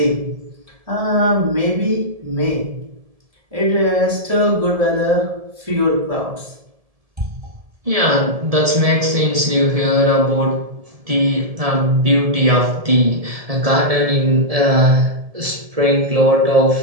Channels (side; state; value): left; late; 1.7 ms